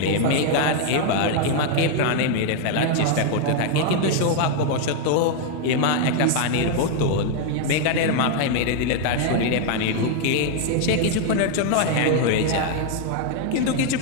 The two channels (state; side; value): different; both; correlation 0.00